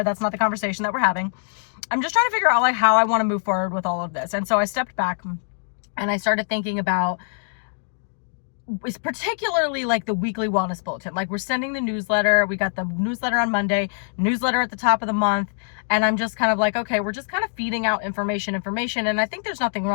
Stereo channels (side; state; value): right; silent; digital silence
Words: That's not the conversation that we're having. I'm just trying to figure out like how I want to move forward with all of this. And so I stepped back and I started thinking about, it's particularly like the weekly wellness bulletin. Like we're sending the newsletter. We got the newsletter on Monday, newsletter at the top of the month. And I'm just kind of like, okay, we're just kind of feeding out information. And I think there's nothing